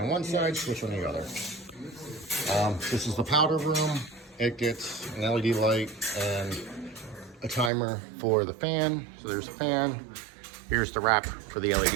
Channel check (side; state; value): left; drops out; at 7.7 s